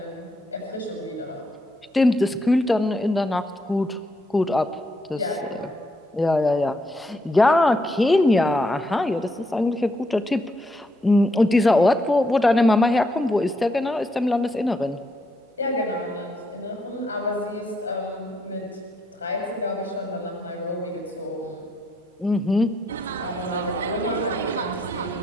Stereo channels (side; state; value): both; normal; correlation 0.77